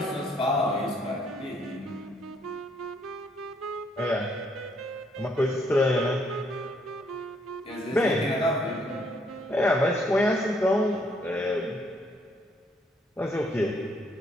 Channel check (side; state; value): both; normal; correlation 0.69